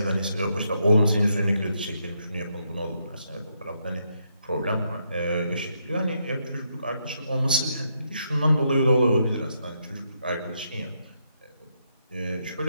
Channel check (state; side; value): inverted; both; correlation -0.78